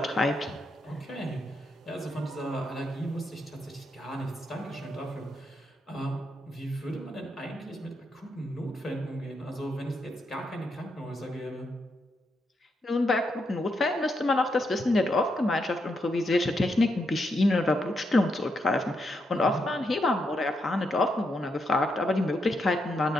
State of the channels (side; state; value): both; normal; correlation 0.81